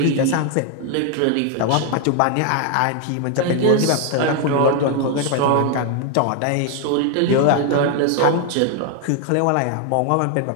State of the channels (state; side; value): different; both; correlation 0.01